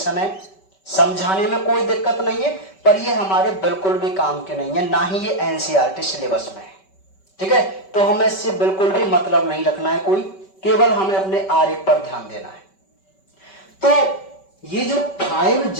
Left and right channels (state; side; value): late; right; 5.2 ms